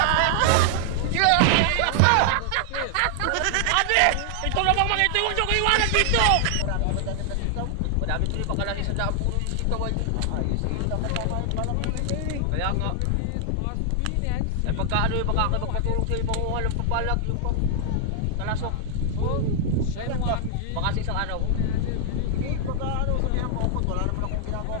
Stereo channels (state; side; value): different; both; correlation 0.00